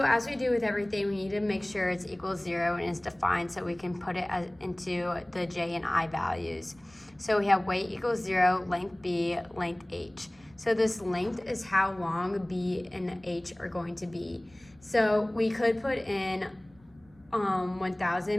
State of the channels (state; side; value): noise; right; rumble, 28 dB below the sound